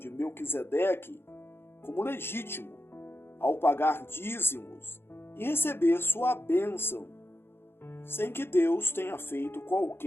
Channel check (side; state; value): right; late; 0.11 ms